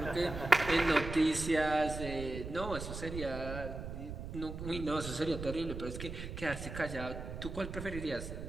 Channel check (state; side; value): noise; right; rumble, 8 dB below the sound